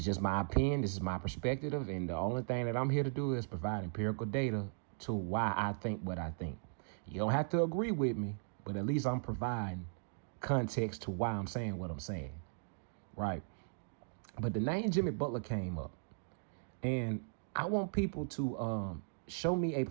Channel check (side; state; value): left; silent; digital silence